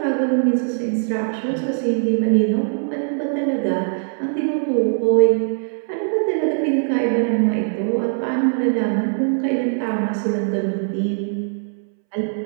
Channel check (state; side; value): silent; left; 64 dB below the other